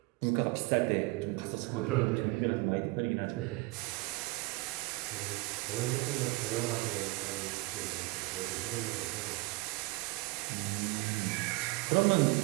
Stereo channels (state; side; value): quieter; left; 24.6 dB